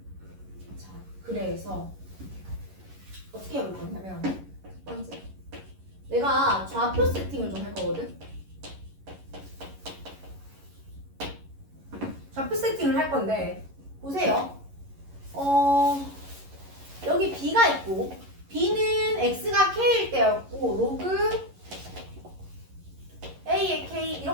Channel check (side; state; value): left; late; 11 ms